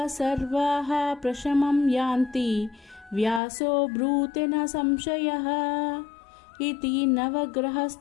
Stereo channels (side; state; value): right; drops out; at 3.4 s